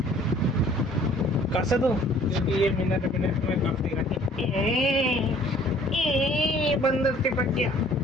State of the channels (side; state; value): both; normal; correlation 0.55